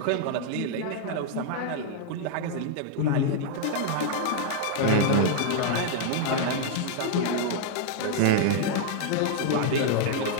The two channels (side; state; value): both; different; correlation -0.01